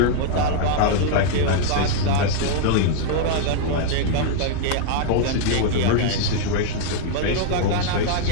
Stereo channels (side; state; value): both; different; correlation 0.00